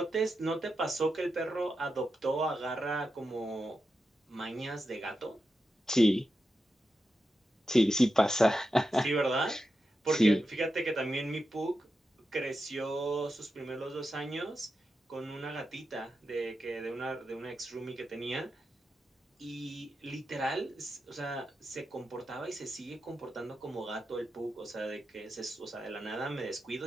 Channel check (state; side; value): normal; both; correlation 0.89